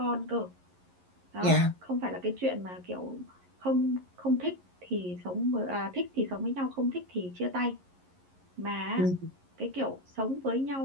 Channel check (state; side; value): late; left; 11 ms